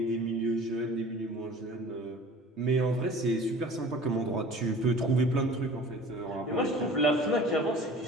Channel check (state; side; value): normal; both; correlation 0.44